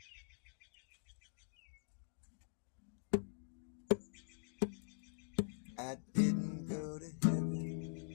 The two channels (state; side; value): silent; right; digital silence